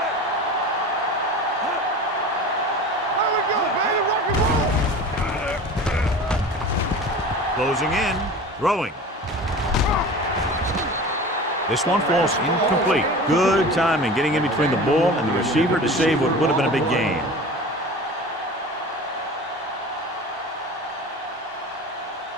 There we go, baby. Rock and roll. Closing in, throwing. This one falls incomplete. Good timing getting in between the ball and the receiver to save what would have been a big gain.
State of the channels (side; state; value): both; normal; correlation 0.36